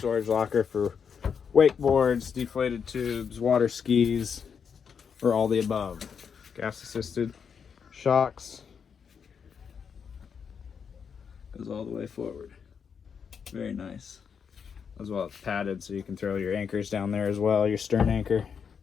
locker for wakeboards, deflated tubes, water skis, or all the above. Gas assisted shocks, goes all the way forward. Very nice. As well, it's padded so you can throw your anchors down there as well, your stern anchor.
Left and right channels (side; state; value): right; quieter; 6.7 dB